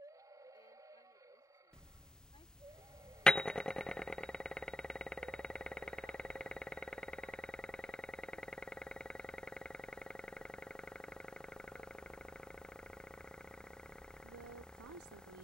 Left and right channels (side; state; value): both; normal; correlation 0.84